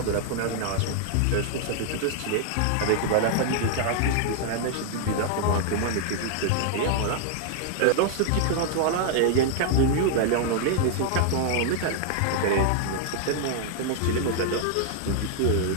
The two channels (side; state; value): both; different; correlation 0.00